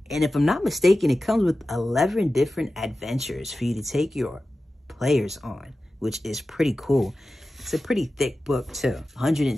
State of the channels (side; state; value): both; normal; correlation 0.94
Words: And if I'm not mistaken, it comes with 11 different adventures for you to take your players on, which is pretty cool. It's a pretty thick book too,